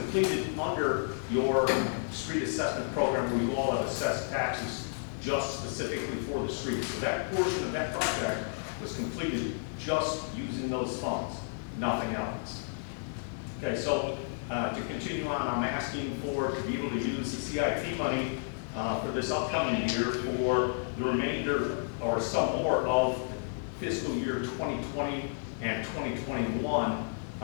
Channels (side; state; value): right; silent; digital silence